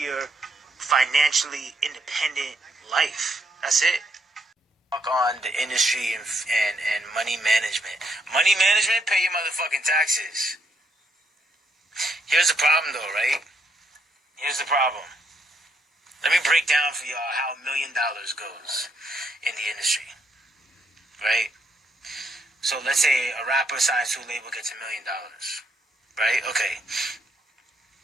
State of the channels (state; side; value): normal; both; correlation 0.74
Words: financially independent life. That's it. On the industry and money management. Money management, pay your motherfucking taxes. Here's the problem though, right? Here's the problem. Let me break down for y'all how $1 million goes in the industry. Right? So let's say a rapper signs to a label, gets $1 million, right? Okay,